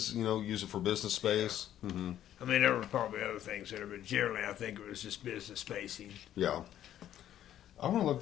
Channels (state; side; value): quieter; right; 11.5 dB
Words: Use it for business space. Mm-hmm. I mean, there were probably other things there, but generally, I think it was just business spacing. Yeah. I want to look